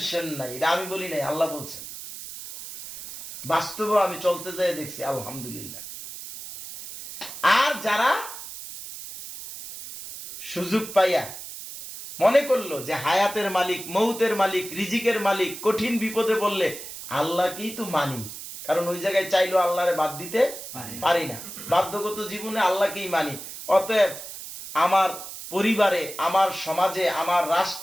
নাই। এটা আমি বলি নাই, আল্লাহ বলছেন। বাস্তবে আমি চলতে যাই দেখছি, আলহামদুলিল্লাহ। আর যারা সুযোগ পাইয়া মনে করলো যে হায়াতের মালিক, মৌতের মালিক, রিজিকের মালিক, কঠিন বিপদে বললে আল্লাহকেই তো মানি, কারণ ওই জায়গায় চাইলো আল্লাহরে বাদ দিতে পারি না, বাধ্যগত জীবনে আল্লাহকেই মানি। অতএব আমার পরিবারে, আমার সমাজে, আমার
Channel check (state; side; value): noise; right; hiss, 11 dB below the sound